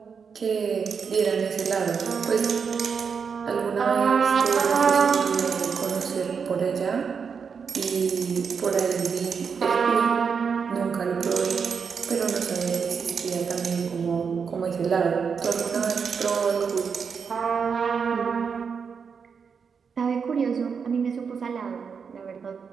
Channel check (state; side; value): quieter; left; 6.1 dB